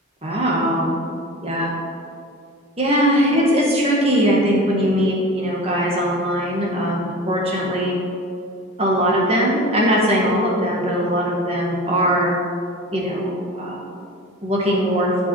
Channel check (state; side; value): normal; both; correlation 0.35